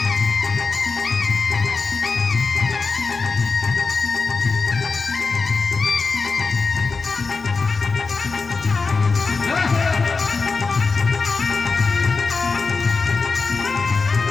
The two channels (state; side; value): quieter; right; 4.4 dB